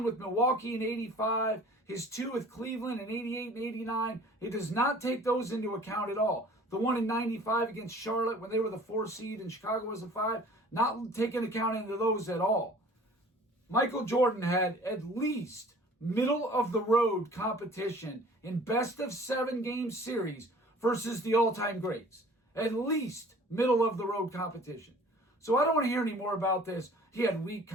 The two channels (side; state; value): both; normal; correlation 0.49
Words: with Milwaukee in 85, his 2 with Cleveland in 88 and 89. It does not take those into account at all. The 1 in 95 against Charlotte when they were the 4 seed and Chicago was the 5, not taking account into those at all. Michael Jordan had at least middle of the road competition in best of 7 game series versus the all-time greats. At least middle of the road competition. So I don't want to hear any more about this. He had weak